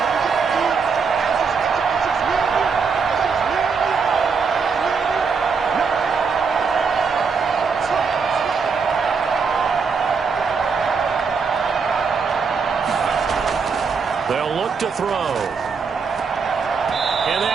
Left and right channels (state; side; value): quieter; left; 5.3 dB